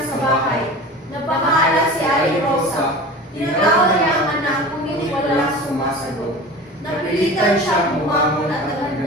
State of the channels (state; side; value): normal; both; correlation 0.35